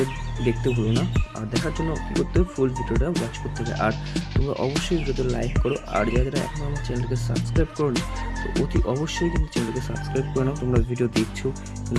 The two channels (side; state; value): both; identical; correlation 1.00